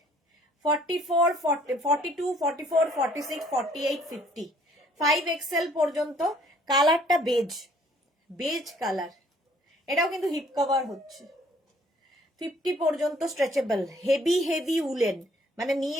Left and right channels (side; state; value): both; normal; correlation 0.60